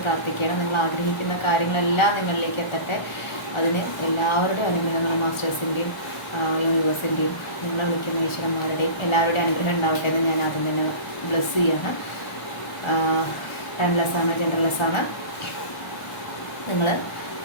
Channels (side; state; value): right; late; 1.1 ms